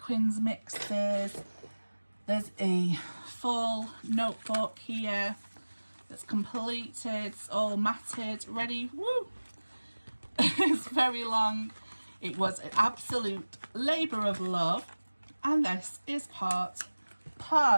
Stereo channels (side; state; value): both; inverted; correlation -1.00